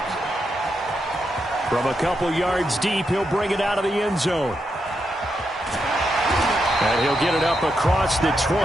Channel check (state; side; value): normal; both; correlation 0.83